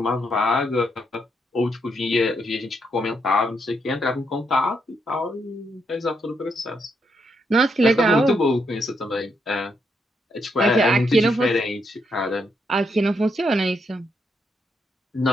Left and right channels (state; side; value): normal; both; correlation 0.78